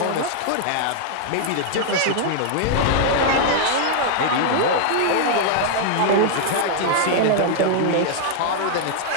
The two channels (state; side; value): different; both; correlation -0.01